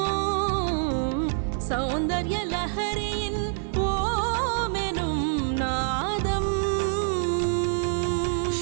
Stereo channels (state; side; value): silent; left; 61 dB below the other